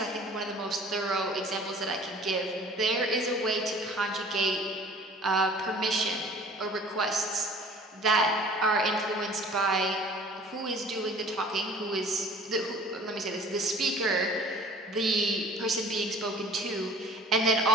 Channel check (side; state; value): both; normal; correlation 0.48